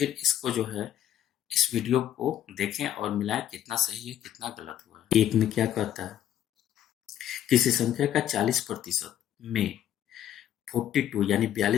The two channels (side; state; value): right; quieter; 11.2 dB